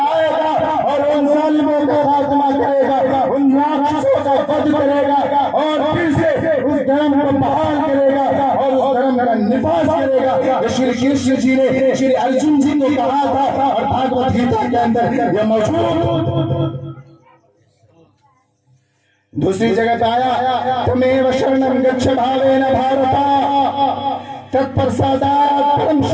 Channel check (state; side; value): identical; both; correlation 1.00